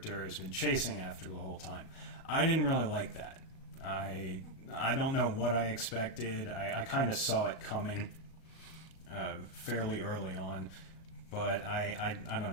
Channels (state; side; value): late; right; 37 ms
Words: has been chasing after the whole time. I didn't really like that. I don't know what I expected. I kind of saw it coming fairly early on, but I don't